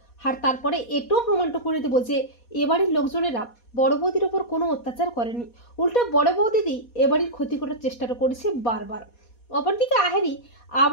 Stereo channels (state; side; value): late; right; 4.2 ms